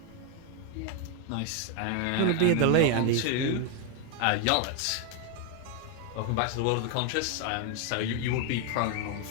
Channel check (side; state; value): both; different; correlation 0.01